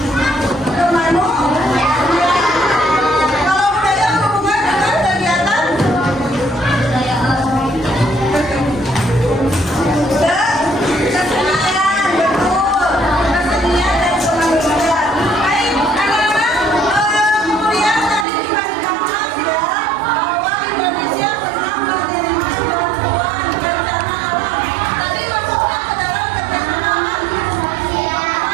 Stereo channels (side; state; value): left; drops out; at 18.2 s